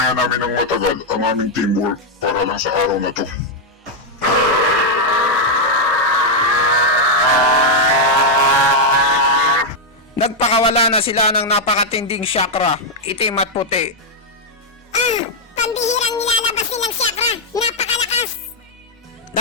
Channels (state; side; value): normal; both; correlation -0.01